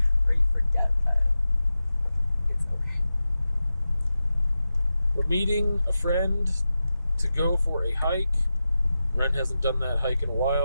Or you forget that it's okay. We're meeting a friend to go for a hike. Wren hasn't done that hike in a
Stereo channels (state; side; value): inverted; both; correlation -0.92